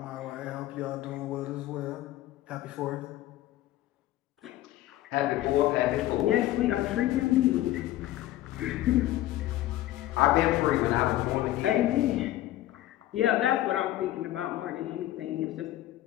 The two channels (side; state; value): right; quieter; 14.9 dB